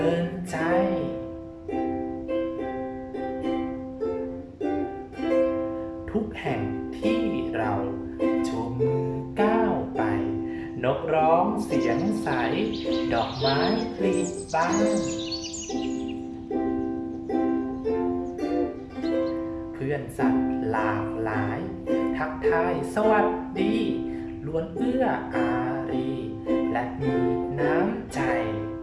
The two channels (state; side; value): identical; both; correlation 1.00